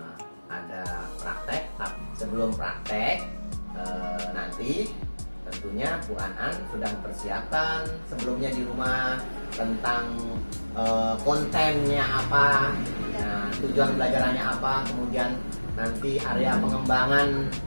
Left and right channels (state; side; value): inverted; both; correlation -1.00